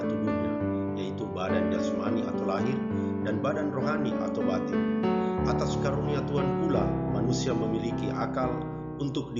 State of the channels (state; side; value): identical; both; correlation 1.00